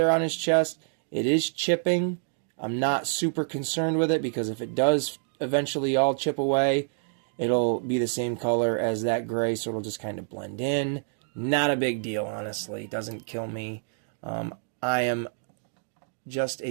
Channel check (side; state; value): left; silent; digital silence